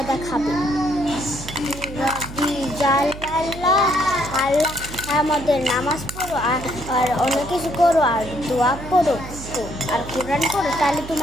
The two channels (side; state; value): right; noise; hum, 12 dB below the sound